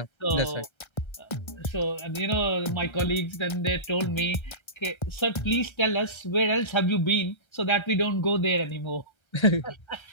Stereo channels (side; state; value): right; late; 1.3 ms